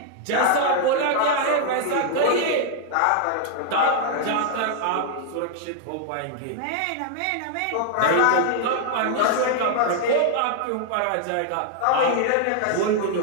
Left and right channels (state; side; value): different; both; correlation 0.00